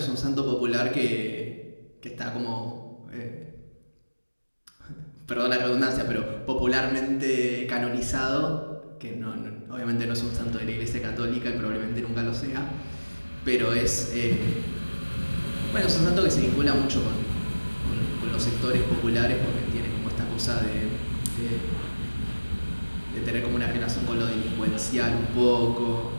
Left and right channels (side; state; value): both; inverted; correlation -1.00